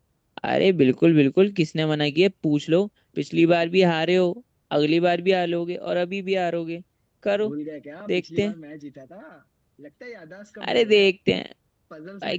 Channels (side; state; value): both; identical; correlation 1.00